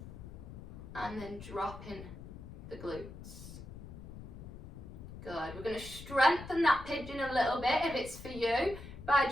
and then dropping the glutes. Good. We're going to strengthen that pigeon a little bit if it's for you by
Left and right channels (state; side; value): noise; left; rumble, 13 dB below the sound